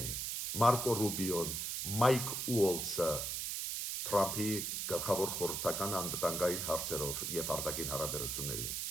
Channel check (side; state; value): right; noise; hiss, 2 dB below the sound